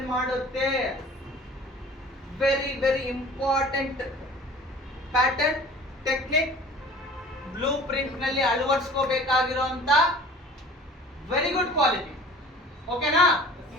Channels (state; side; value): normal; both; correlation 0.45